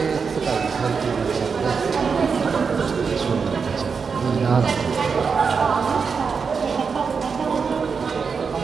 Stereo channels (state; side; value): quieter; left; 5.6 dB